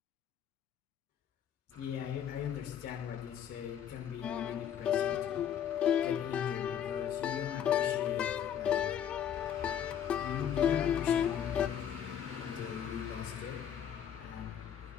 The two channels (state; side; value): quieter; right; 9.2 dB